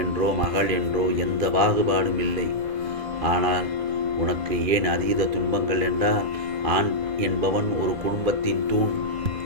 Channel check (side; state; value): left; late; 2.4 ms